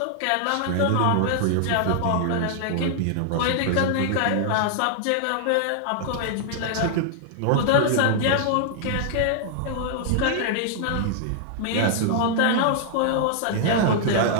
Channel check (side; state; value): both; different; correlation -0.01